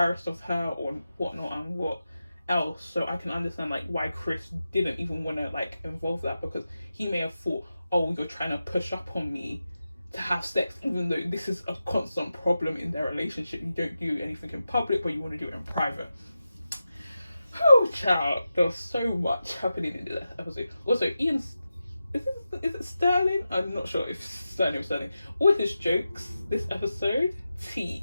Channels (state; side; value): inverted; both; correlation -0.91